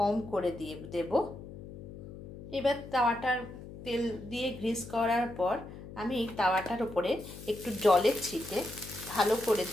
করে দিয়ে দেব। এবার তাওয়াটার তেল দিয়ে গ্রিস করার পর আমি তাওয়াটার উপরে একটু জলের ছিটে ভালো করে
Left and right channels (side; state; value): left; noise; hum, 13 dB below the sound